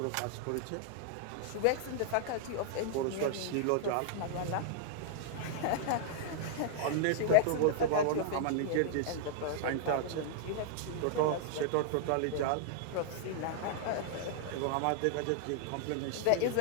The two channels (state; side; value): different; both; correlation -0.01